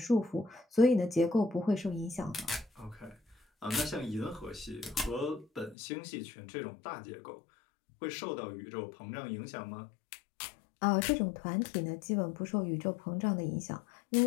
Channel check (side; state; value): right; drops out; at 5.8 s